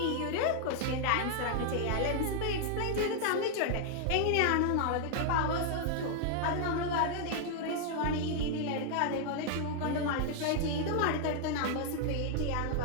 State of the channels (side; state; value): both; different; correlation 0.00